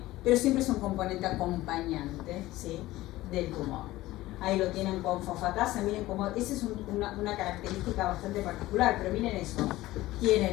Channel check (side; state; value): right; quieter; 17.2 dB